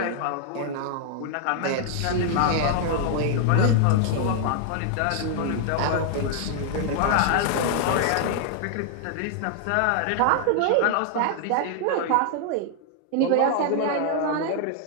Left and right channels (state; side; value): different; both; correlation 0.00